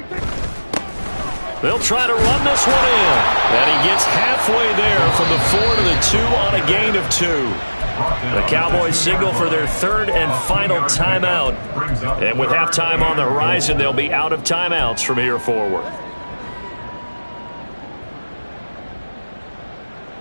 They'll try to run this one in. And he gets halfway there from the 4 to the 2 on a gain of 2. The Cowboys signal for their 3rd and final timeout. And with halftime on the horizon, they'll be out of timeouts from here forward.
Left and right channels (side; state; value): both; inverted; correlation -1.00